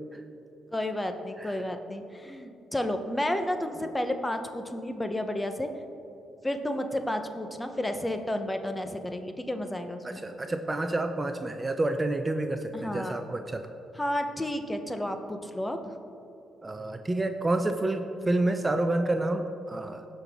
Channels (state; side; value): normal; both; correlation 0.90